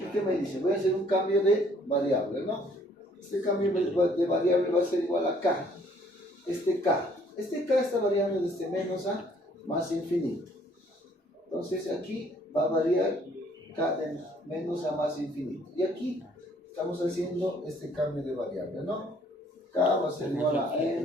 ¿qué me dice? Voy a hacer un cambio de variable, ¿no? Este cambio de variable va a ser igual a k. Este k está variando desde menos a más infinito. Entonces aquí va a variar k de menos a más infinito. Y aquí estamos haciendo este cambio de variable, ¿no? K va a ser igual a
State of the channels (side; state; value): both; normal; correlation 0.61